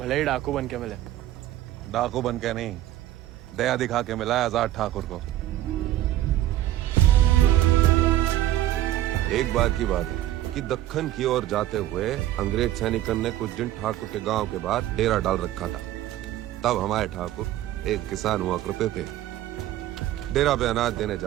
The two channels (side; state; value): left; quieter; 13.7 dB